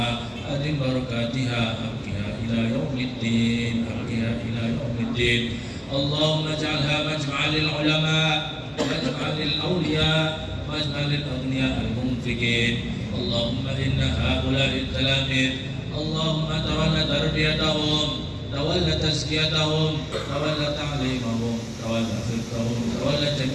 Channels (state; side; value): identical; both; correlation 1.00